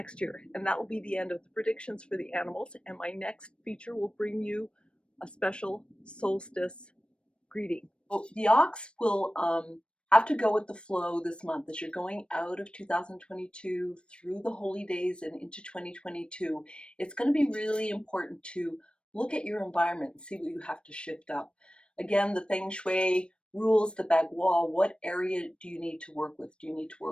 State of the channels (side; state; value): right; late; 0.057 ms